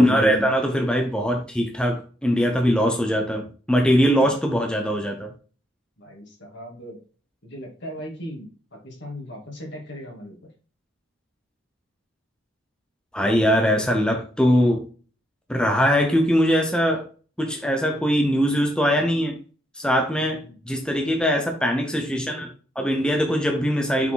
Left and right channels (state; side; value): normal; both; correlation 0.76